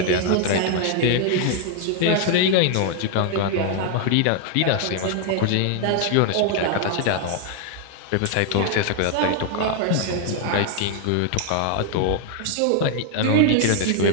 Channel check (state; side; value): different; both; correlation 0.00